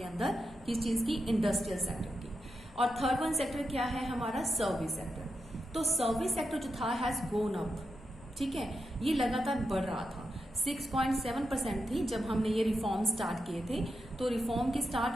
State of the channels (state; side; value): noise; left; hum, 23 dB below the sound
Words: अंदर, किस चीज की, इंडस्ट्रियल सेक्टर की। और थर्ड वन सेक्टर क्या है हमारा, सर्विस सेक्टर। तो सर्विस सेक्टर जो था हैज गोन अप। ठीक है, ये लगातार बढ़ रहा था। 6.7% थी जब हमने ये रिफॉर्म स्टार्ट किए थे। तो रिफॉर्म के